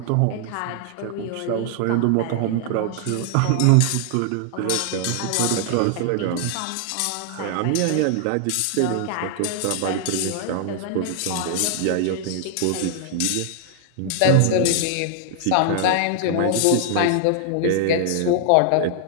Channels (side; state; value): both; different; correlation 0.00